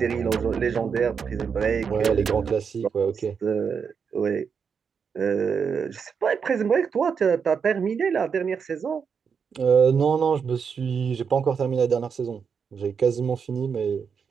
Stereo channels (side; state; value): left; quieter; 6.4 dB